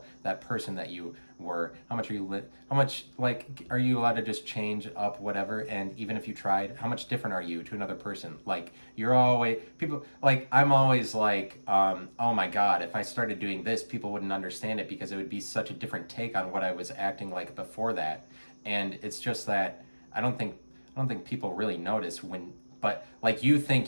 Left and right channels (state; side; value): inverted; both; correlation -1.00